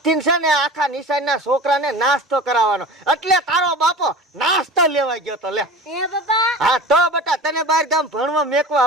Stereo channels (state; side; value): normal; both; correlation 0.36